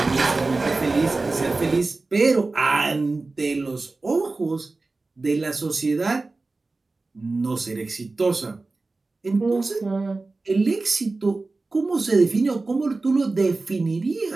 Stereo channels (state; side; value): quieter; left; 3.5 dB